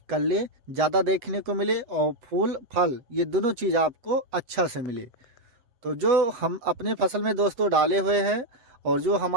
कल्ले ज़्यादा देखने को मिले और फूल फल ये दोनों चीज़ आपको अच्छा से मिले। तो जो हम अपने फसल में दोस्तों डाले हुए हैं और जो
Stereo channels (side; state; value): left; late; 7.6 ms